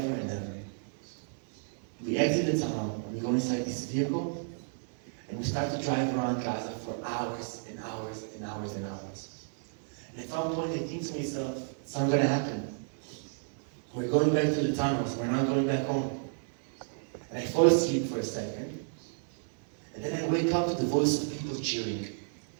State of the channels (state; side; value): silent; left; digital silence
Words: and ever. We exit the tunnel, and we go inside this vehicle, and we start to drive around Gaza for hours and hours and hours and hours. And at some point I think to myself, it's not going to happen. We're going back to the tunnels, we're not going back home. And I fall asleep for a second, and then I wake up to the voice of people cheering.